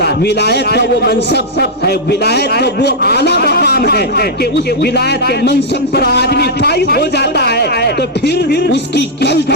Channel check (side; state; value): both; normal; correlation -0.05